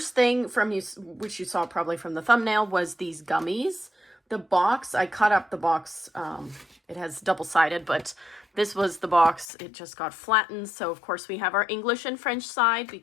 thing from you, which you saw probably from the thumbnail, was these gummies. The box, I cut up the box, it has double-sided, but this was the box. It just got flattened, so of course we have our English and French side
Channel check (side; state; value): right; drops out; at 9.5 s